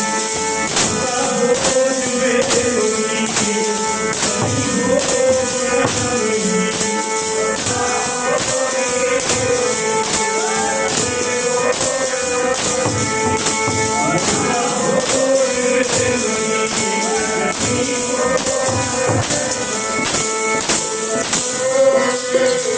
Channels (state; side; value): identical; both; correlation 1.00